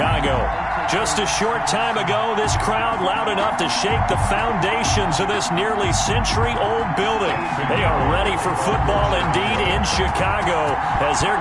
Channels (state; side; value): identical; both; correlation 1.00